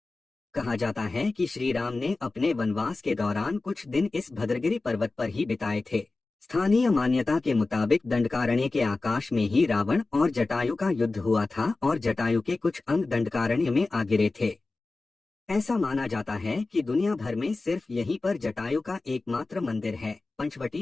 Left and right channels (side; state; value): right; quieter; 3.5 dB